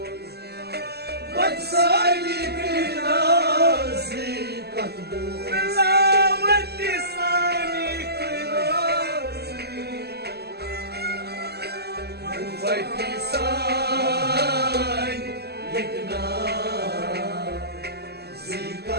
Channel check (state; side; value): late; left; 0.47 ms